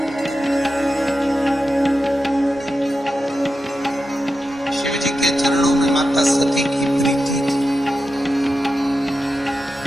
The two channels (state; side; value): normal; both; correlation 0.90